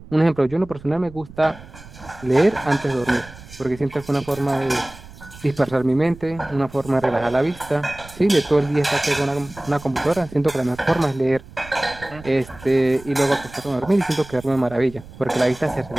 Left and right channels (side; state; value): right; noise; rumble, 19 dB below the sound